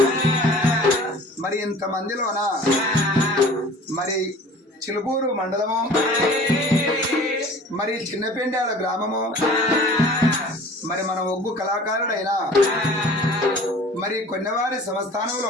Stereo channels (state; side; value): normal; both; correlation 0.45